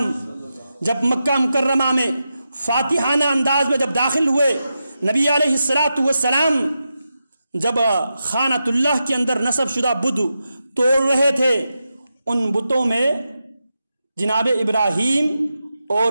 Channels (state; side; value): inverted; both; correlation -0.89